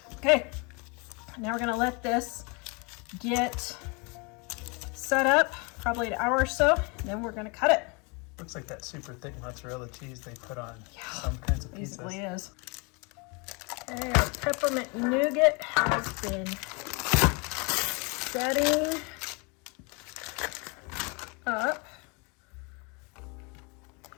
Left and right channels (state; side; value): quieter; right; 30.9 dB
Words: Okay. Now we're going to let this get set up. Probably an hour or so, and then we're gonna cut it. Looks like that super thick mozzarella cheese they put on some kinds of pizzas. Basically is. Okay, our peppermint nougat has been setting up.